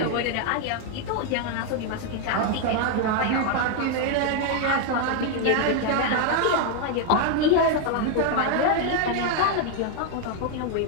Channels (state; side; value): different; both; correlation 0.00